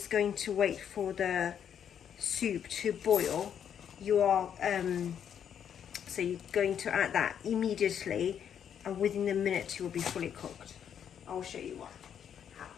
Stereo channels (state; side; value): quieter; right; 8.7 dB